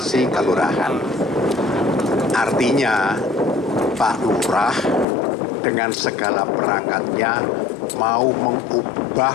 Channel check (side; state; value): right; drops out; at 5.1 s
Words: kelurahan. Artinya Pak Lurah dengan segala perangkatnya mau